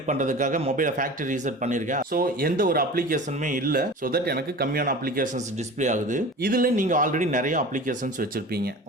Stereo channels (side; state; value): both; normal; correlation 0.37